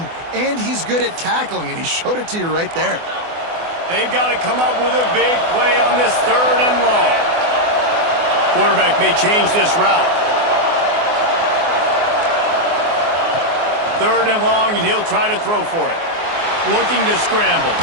and he's good at tackling, and he showed it to you right there. They've got to come up with a big play on this 3rd and long. Quarterback may change this route. 3rd and long, and he'll try to throw for it. Looking to scramble.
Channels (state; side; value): late; left; 24 ms